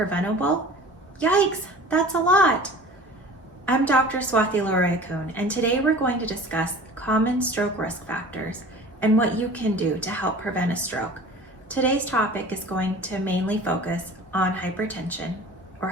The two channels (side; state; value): both; normal; correlation 0.41